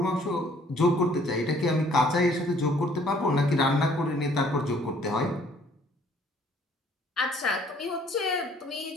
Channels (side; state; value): both; normal; correlation 0.60